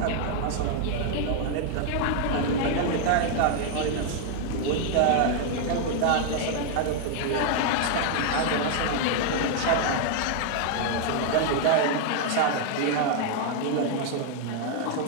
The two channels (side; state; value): both; different; correlation 0.00